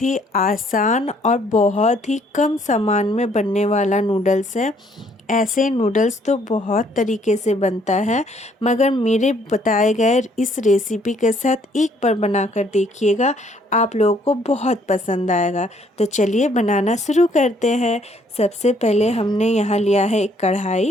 ही आसान और बहुत ही कम सामान में बनने वाला नूडल्स है। ऐसे नूडल्स तो बहुत तरीके से बनता है, मगर मेरे बताए गए इस रेसिपी के साथ एक बार बनाकर देखिएगा, आप लोगों को बहुत पसंद आएगा। तो चलिए बनाना शुरू करते हैं। सबसे पहले हमने यहाँ लिया है एक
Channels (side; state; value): both; normal; correlation 0.65